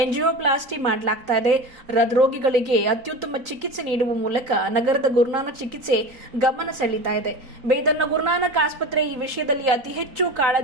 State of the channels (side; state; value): left; late; 3.8 ms